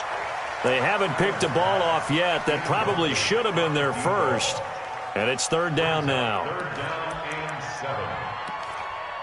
They haven't picked a ball off yet. That probably should have been their first. And it's 3rd down now. 3rd down and 7.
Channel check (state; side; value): identical; both; correlation 1.00